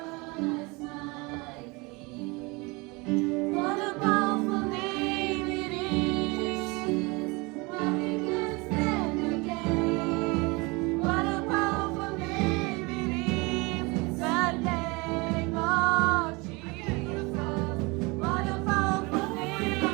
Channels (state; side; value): quieter; left; 26.3 dB